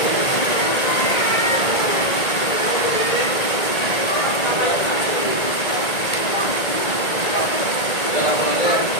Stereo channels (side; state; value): right; late; 1.8 ms